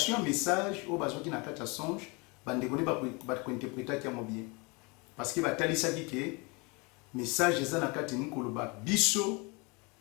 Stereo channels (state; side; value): quieter; right; 28.9 dB